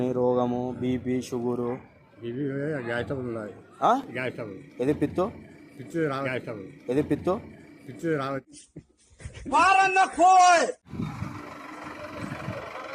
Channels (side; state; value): both; identical; correlation 1.00